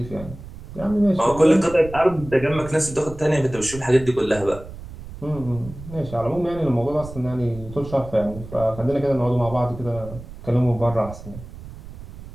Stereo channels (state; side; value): noise; right; rumble, 14 dB below the sound